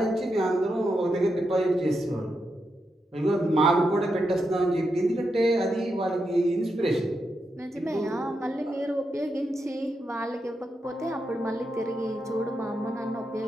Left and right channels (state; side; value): normal; both; correlation 0.85